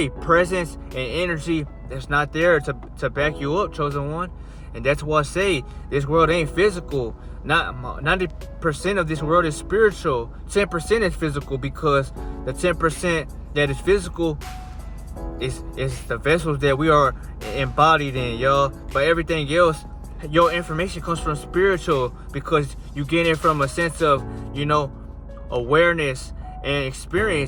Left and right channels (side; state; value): both; identical; correlation 1.00